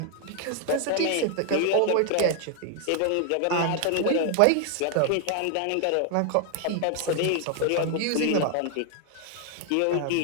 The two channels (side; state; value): both; different; correlation 0.00